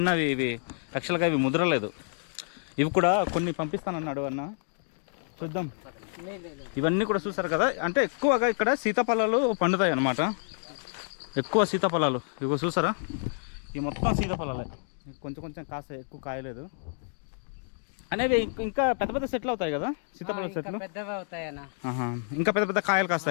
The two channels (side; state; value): right; silent; digital silence